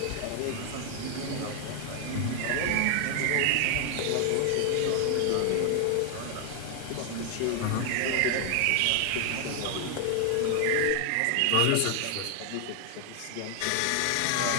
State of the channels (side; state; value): both; different; correlation 0.00